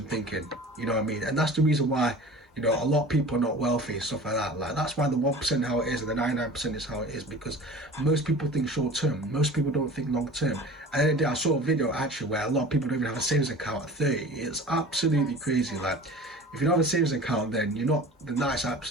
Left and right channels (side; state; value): both; normal; correlation 0.40